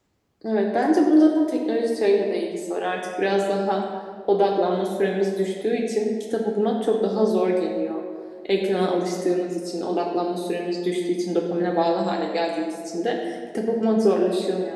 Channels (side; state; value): both; identical; correlation 1.00